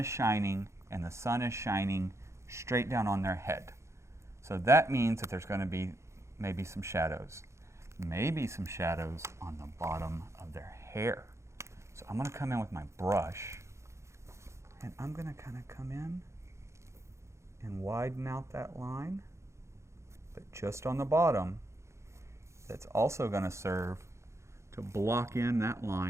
shining, and the sun is shining straight down on their head. So that means that there's going to be maybe some shadows. Maybe some shadows on the bottom of their hair. So I'm going to come in with my brush, and I'm going to kind of come in and widen out that line, but just on the bottom. That's also going to serve to block in that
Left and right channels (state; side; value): late; left; 0.14 ms